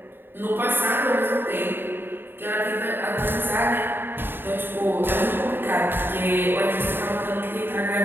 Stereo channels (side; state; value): left; late; 0.098 ms